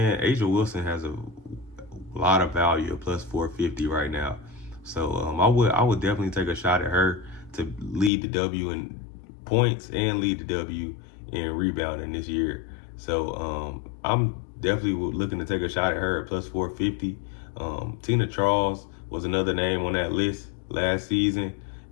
A'ja Wilson has a lot of value at plus 450 right now. So I would definitely take a shot at her to lead the W in points and lead the W in rebounding this year. So I'm definitely looking to take a shot at her at plus 450. Tina Charles was another name on that list last season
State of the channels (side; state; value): right; drops out; at 8.1 s